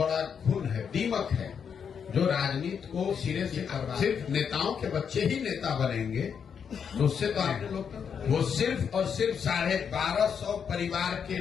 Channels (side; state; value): right; quieter; 7.1 dB